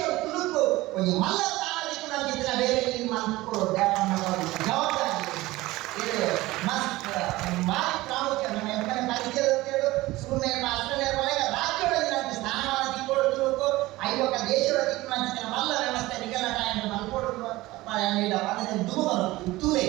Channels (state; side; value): quieter; left; 18.8 dB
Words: ತುಳುಕು ಒಂದು ಮಲ್ಲ ಸಾಮಾಜಿಕ ನಂಬಿಕೆ ಬೇರೆ ಇಲ್ಲಿ ಮಾಡ್ಕೊಳ್ಳೋದು ಜವಾಬ್ದಾರಿ ಇದು ಮಸ್ತ್ ಭಾರಿ ಪ್ರಾಮುಖ್ಯ. ನಮ್ಮ ಎಮ್ಮನೆ ಪರಿಚಯಗಳು ಸುಮ್ಮನೆ ಅಸ್ಟ್ರೇಲಿಯಾ ಪಾಲಕ ರಾಜ್ಯಗಳಲ್ಲಿ ನಮಗೆ ಸ್ಥಾನಮಾನ ತಿಳ್ಕೊಳ್ಳೋ ತುಳುಕು ಐವತ್ತ ದೇಶಗಳ ತಿಳ್ಕೊಳ್ಳೋ ಮಲ್ಲ ವ್ಯವಸ್ಥೆ ನಿಗಲಟ ಎಂದು ಮಲ್ಕೊಡುವ ತೂಲೆ